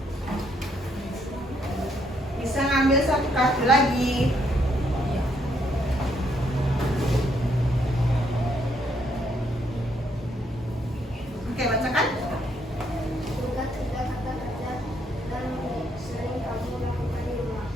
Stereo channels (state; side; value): normal; both; correlation 0.72